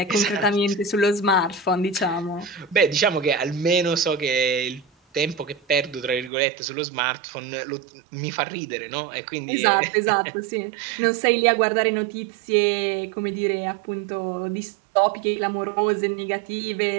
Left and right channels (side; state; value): left; drops out; at 6.3 s